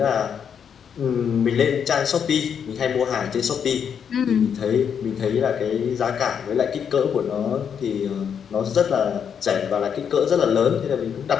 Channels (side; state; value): right; quieter; 7.6 dB